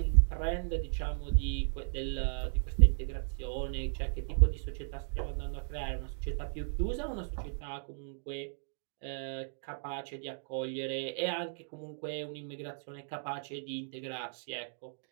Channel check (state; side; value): silent; left; digital silence